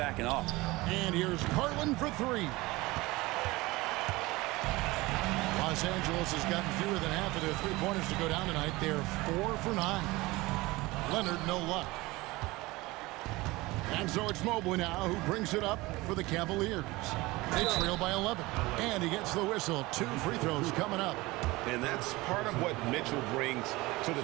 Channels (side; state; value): left; quieter; 21.1 dB